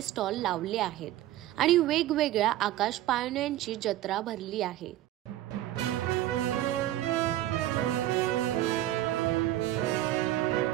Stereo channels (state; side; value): quieter; left; 14.2 dB